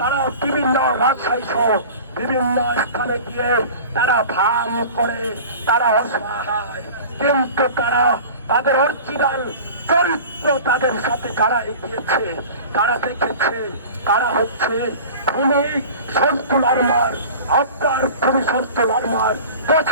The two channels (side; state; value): both; inverted; correlation -0.39